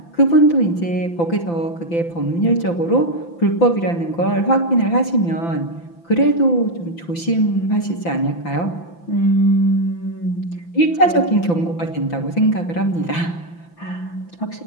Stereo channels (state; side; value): late; right; 5.9 ms